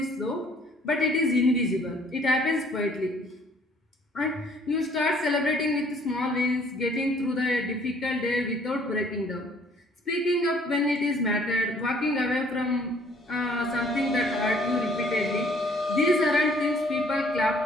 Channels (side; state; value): both; normal; correlation 0.60